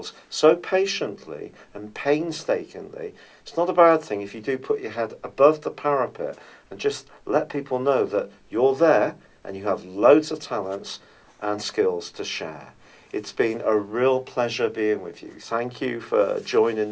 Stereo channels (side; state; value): both; identical; correlation 1.00